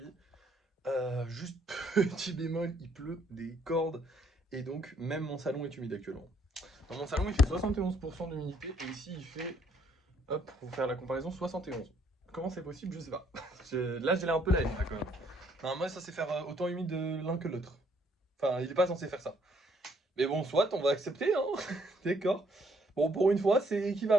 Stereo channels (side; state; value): both; normal; correlation 0.68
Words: Juste petit bémol, il pleut des cordes. Et donc, même mon salon est humide actuellement. Dans mon salon, il fait 71% d'humidité. Et ici, il fait, hop, pour faire la comparaison, 71. Comment c'est possible, je sais pas. Là, j'ai l'air un peu la haine, là, quand même. Non, moi, ça c'est faire autant humide l'un que l'autre. Enfin, il est pas censé faire ça. Mais bon, soit, on va accepter, hein. D'accord. Bon, pour une fois, c'est